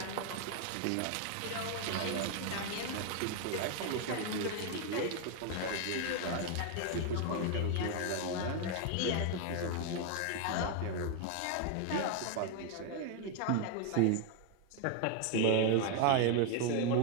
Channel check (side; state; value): both; different; correlation 0.00